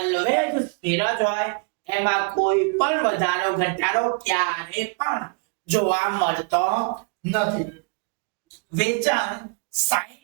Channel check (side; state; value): left; quieter; 38.9 dB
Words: સ્થિર જ હોય. એમાં કોઈ પણ વધારો ઘટાડો ક્યારે પણ જોવા મળતો નથી. વેચાણ